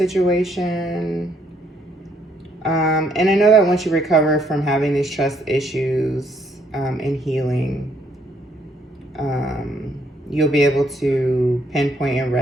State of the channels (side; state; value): both; normal; correlation 0.70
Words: And I know that once you recover from having these trust issues and healing, you'll be able to pinpoint and